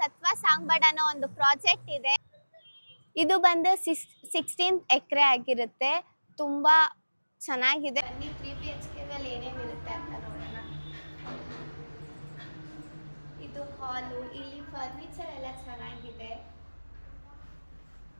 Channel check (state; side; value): inverted; both; correlation -1.00